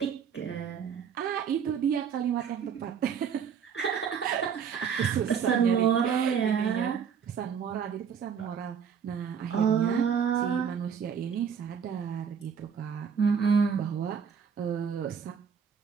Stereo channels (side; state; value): left; quieter; 7.2 dB